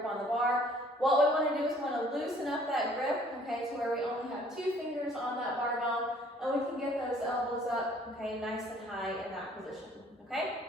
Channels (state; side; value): normal; both; correlation 0.57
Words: on the bar, what we wanna do is we wanna loosen up that grip, okay, to where we only have 2 fingers on that barbell, and we can get those elbows up, okay, nice and high in that position, okay?